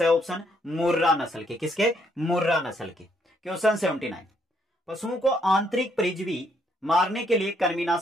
ऑप्शन, मुर्रा नस्ल के। किसके? मुर्रा नस्ल के। क्वेश्चन 79, पशुओं को आंतरिक परजीवी मारने के लिए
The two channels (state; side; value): normal; both; correlation 0.71